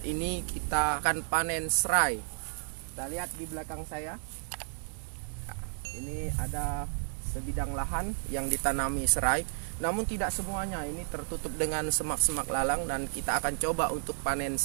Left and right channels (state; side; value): silent; left; 56 dB below the other